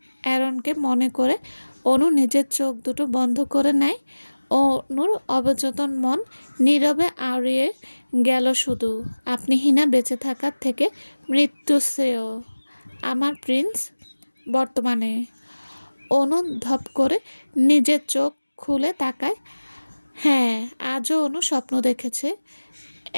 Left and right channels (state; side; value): inverted; both; correlation -1.00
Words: অ্যারনকে মনে করে অনু নিজের চোখ দুটো বন্ধ করে নেয়। অনুর অবচেতন মন নীরবে আওড়িয়ে গেল শুধু, আপনি হীনা বেঁচে থাকার থেকে মৃত্যু শ্রেয় আমার প্রিন্স। বর্তমানে অনু ধপ করে নিজের চোখ খুলে তাকায়। হ্যাঁ, আজও অনু স্বপ্ন দেখেছে।